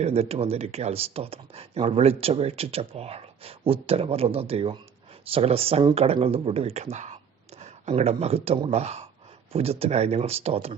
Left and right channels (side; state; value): left; quieter; 7.4 dB